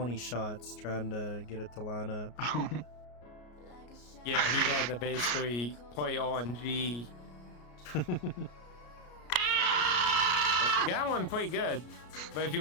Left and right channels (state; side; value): late; right; 33 ms